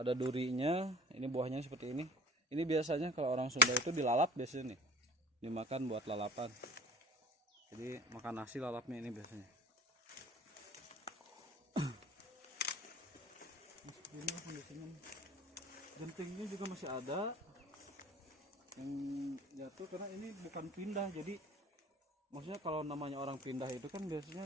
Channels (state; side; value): normal; both; correlation 0.44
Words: durinya. Ini buahnya seperti ini. Ini biasanya kalau orang Sunda itu dilalap biasanya nih, dimakan buat lalapan. Jadi makan nasi lalapnya ini biasanya. Seperti ini kondisinya. Gentingnya juga masih ada yang jatuh, karena ini bukan pindah. Jadi maksudnya kalau namanya orang pindah itu kan biasanya